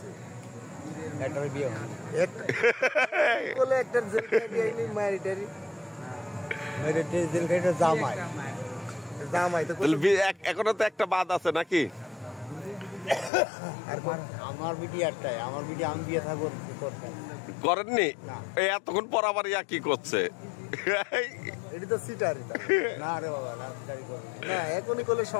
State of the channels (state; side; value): drops out; right; at 13.3 s